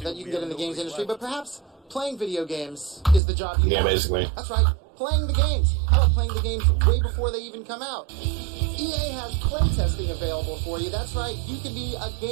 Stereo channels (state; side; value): drops out; left; at 3.2 s